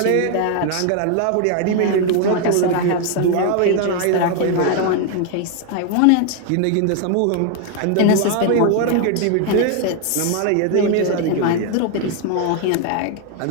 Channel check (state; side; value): different; both; correlation 0.01